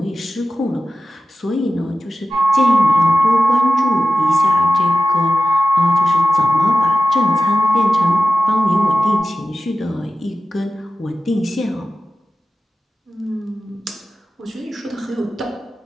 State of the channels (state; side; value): normal; both; correlation 0.93